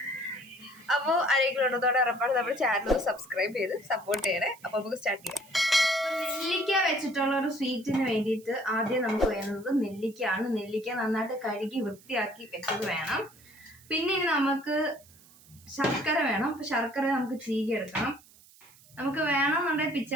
അപ്പോൾ ആരെങ്കിലും ഉള്ളതോടെ ഉറപ്പാണ് നമ്മുടെ ചാനൽ സബ്സ്ക്രൈബ് ചെയ്ത് സപ്പോർട്ട് ചെയ്യണേ. അപ്പോൾ നമുക്ക് സ്റ്റാർട്ട് ചെയ്യാം. നെല്ലിക്ക വെച്ചിട്ടുള്ള ഒരു സ്വീറ്റിന് വേണ്ടിയിട്ട് ആദ്യം നമുക്ക് വേണ്ടത് നെല്ലിക്കയാണ്. നെല്ലിക്ക നന്നായിട്ട് കഴുകി വൃത്തിയാക്കി വെച്ചത് വേണം. പിന്നെ നമുക്ക് ശർക്കര വേണം. അപ്പം ശർക്കര നമുക്ക് ചീകിയെടുക്കണം. നമുക്ക് വേണമെന്നുണ്ടെങ്കിൽ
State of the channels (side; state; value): right; noise; hiss, 25 dB below the sound